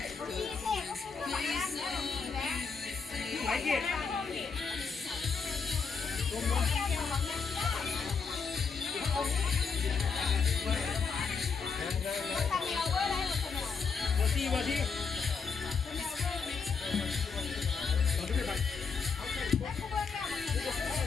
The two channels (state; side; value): quieter; right; 5.2 dB